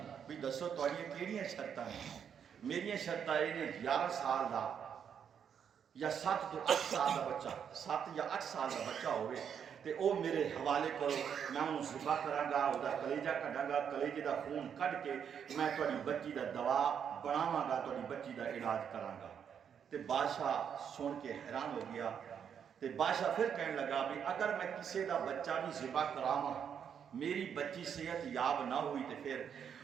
بھی دسو تواڈیاں کیڑیاں شرطاں ہیں میری شرطاں یہ نے 11 سال دا یا 7 تو 8 سال دا بچہ 7 یا 8 سال دا بچہ ہوئے تے او میرے حوالے کرو میں انہوں ذبح کراں گا او دا کلیجہ کڈاں گا کلیجے دا خون کڈ کے میں تواڈی بچی دا دوا بناواں گا تواڈی بچی دا علاج کراں گا تے بادشاہ سن کے حیران ہو گیا تے بادشاہ پھر کہنے لگا بھی اگر میں کسی دا بچہ بھی ذبح کراواں میری بچی صحت یاب نہ ہوئی تے پھر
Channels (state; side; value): quieter; left; 7.9 dB